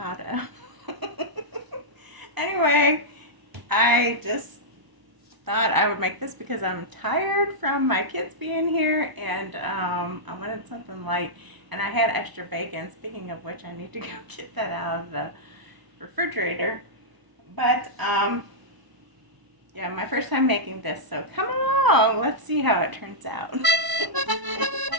Anyway, I just thought I would make this because I'm tired from my kids being here and I wanted something light and I had extra bacon. Speaking of which, I need to go get that out of the refrigerator. But yeah, my first time making this, so come along. Let's see how it turns out.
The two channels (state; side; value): late; left; 1.0 ms